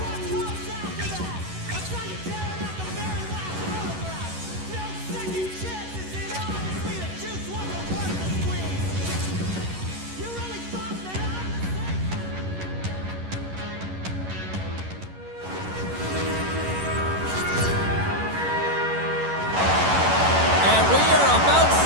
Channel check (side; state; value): left; late; 11 ms